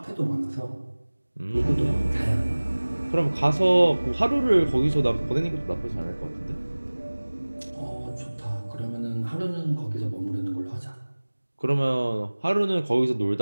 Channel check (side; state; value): both; inverted; correlation -1.00